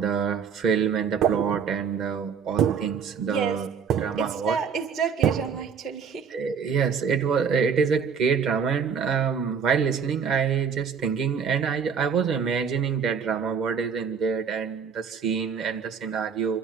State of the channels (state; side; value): quieter; left; 6.6 dB